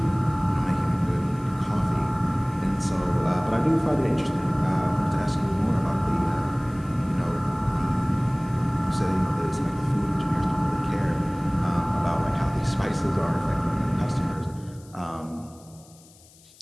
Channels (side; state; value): left; noise; hiss, 26 dB below the sound